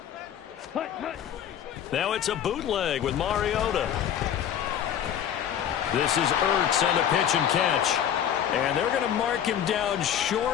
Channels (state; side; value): quieter; right; 9.6 dB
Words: Now it's a bootleg with Mariota. This is Ertz on the pitch and catch. And they're going to mark him down